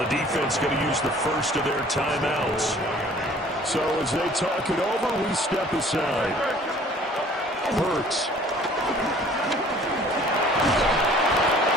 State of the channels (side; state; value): both; normal; correlation 0.52